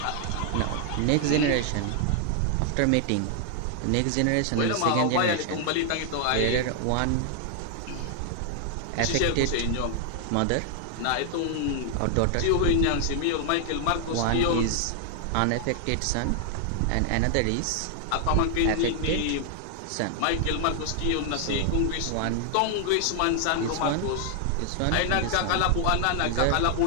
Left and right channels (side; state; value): both; different; correlation 0.00